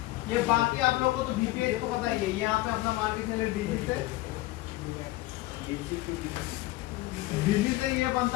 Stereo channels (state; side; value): quieter; right; 18.5 dB